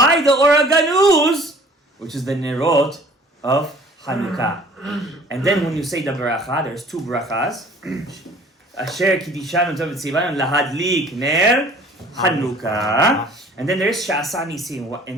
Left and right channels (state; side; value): normal; both; correlation 0.51